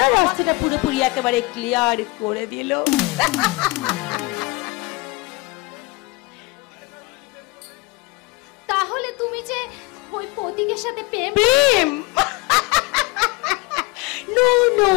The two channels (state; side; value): quieter; right; 24.6 dB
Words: রাস্তাটা পুরোপুরি একেবারে ক্লিয়ার করে দিল। তাহলে তুমি যে ওই প্রতীকের সাথে প্রেম প্রেম? নো নো